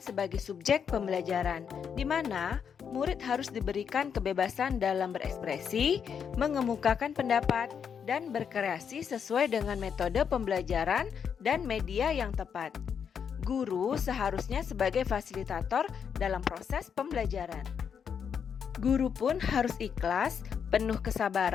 sebagai subjek pembelajaran, di mana murid harus diberikan kebebasan dalam berekspresi, mengemukakan pendapat, dan berkreasi sesuai dengan metode pembelajaran dan media yang tepat. Guru seharusnya sebagai fasilitator dalam proses pembelajaran. Guru pun harus ikhlas, penuh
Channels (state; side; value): quieter; right; 7.2 dB